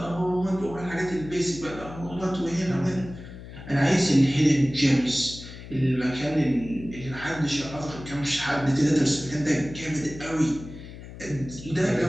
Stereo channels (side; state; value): left; noise; hum, 14 dB below the sound